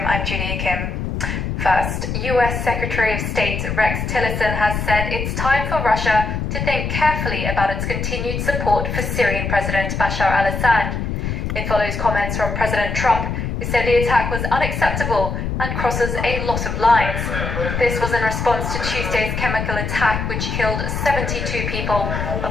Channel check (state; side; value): noise; left; rumble, 3 dB below the sound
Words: I'm Julia Kim. First, US Secretary of State Rex Tillerson has said it's time for Russia to think carefully about its continued support for Syrian President Bashar al-Assad. It follows comments from President Trump, who said the attack was unacceptable and crosses a lot of lines. This was in response to Tuesday's chemical attack, which killed 72 people,